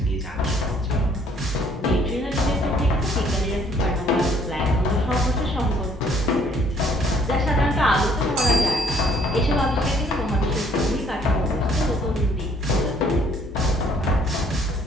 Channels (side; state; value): both; normal; correlation 0.62